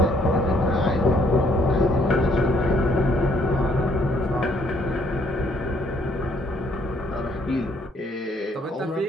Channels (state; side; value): normal; both; correlation 0.66